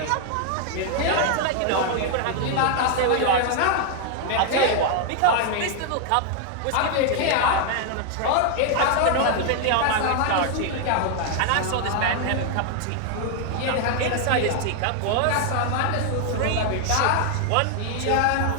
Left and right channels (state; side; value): different; both; correlation 0.00